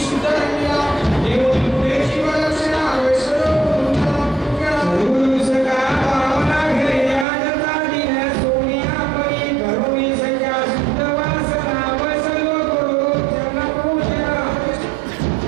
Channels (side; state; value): left; drops out; at 7.2 s